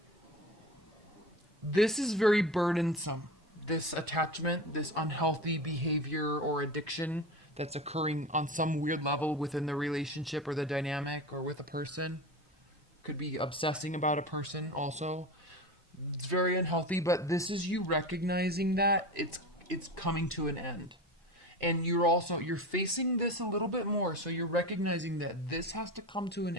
this is very burdensome. This attachment, this unhealthy behavior or addiction that's occurring on some weird level within the relationship or the dynamic or with a person. Could be obsessing about a person also. It's very unhealthy, but this is you recognizing that it's coming to an end. And you're facing this a little bit more, so you're recognizing that this has to come to an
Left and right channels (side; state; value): both; normal; correlation 0.28